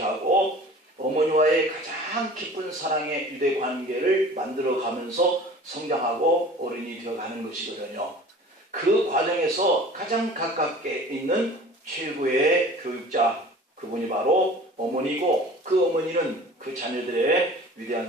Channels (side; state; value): both; normal; correlation 0.44